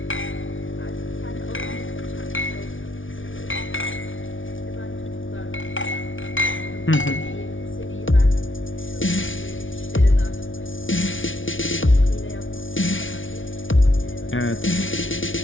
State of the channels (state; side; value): late; right; 0.57 ms